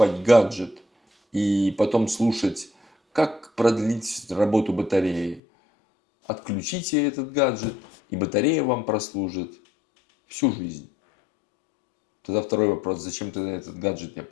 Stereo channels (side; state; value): right; drops out; at 5.4 s